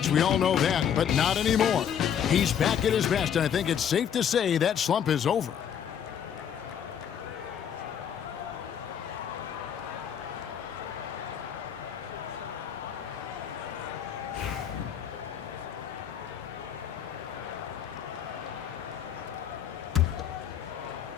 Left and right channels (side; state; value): right; quieter; 8.6 dB